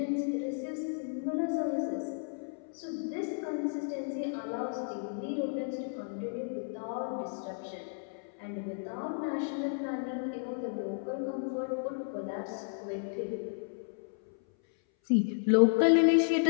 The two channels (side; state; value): right; silent; 56 dB below the other